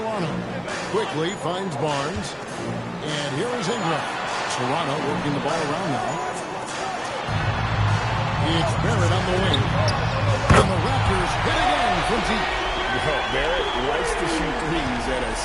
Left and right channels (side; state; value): both; identical; correlation 1.00